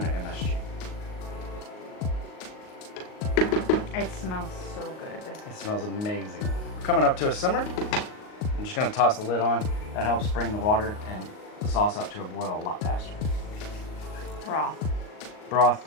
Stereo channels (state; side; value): late; right; 38 ms